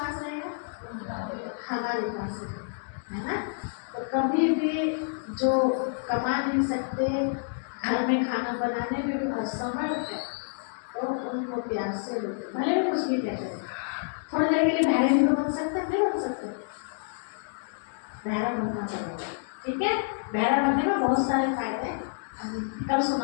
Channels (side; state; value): right; silent; digital silence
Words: रहेगा? हमारे पास है ना। तो कभी भी जो कमा नहीं सकते, घर में खाना बनाने में भी असमर्थ है, तो उनको प्यार से लोग भले भी कुछ भी कहते हैं, थोड़ी देर के लिए बहरे भी तो बन सकते हैं, नहीं बन सकते, बहरा बनना पड़ेगा, ठीक है। बहरा बनने में बहुत सारे फायदे हैं, कल